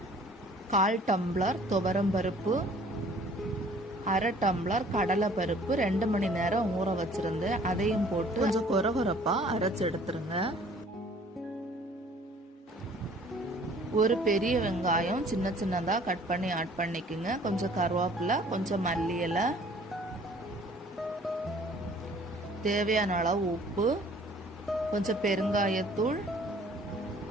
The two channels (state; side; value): normal; both; correlation 0.54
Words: 1/4 டம்ளர் துவரம்பருப்பு, 1/2 டம்ளர் கடலை பருப்பு 2 மணி நேரம் ஊற வச்சிருந்து அதையும் போட்டு கொஞ்சம் கொரகொரப்பாக அரைச்சி எடுத்துருங்க. ஒரு பெரிய வெங்காயம் சின்ன சின்னதாக கட் பண்ணி ஆட் பண்ணிக்கோங்க. கொஞ்சம் கருவேப்பிலை, கொஞ்சம் மல்லி இலை, தேவையான அளவு உப்பு, கொஞ்சம் பெருங்காயத்தூள்,